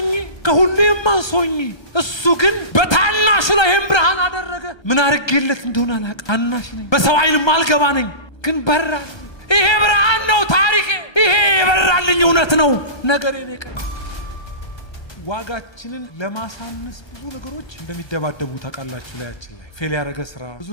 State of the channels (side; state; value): right; late; 1.3 ms